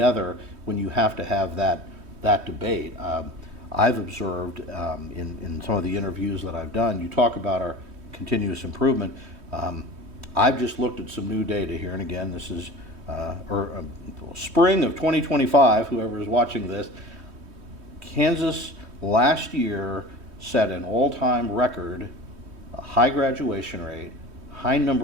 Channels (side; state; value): left; late; 3.2 ms